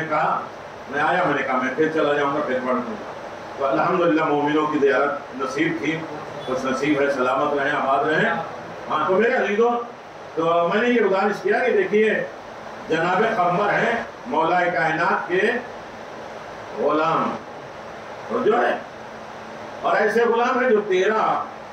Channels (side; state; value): both; identical; correlation 1.00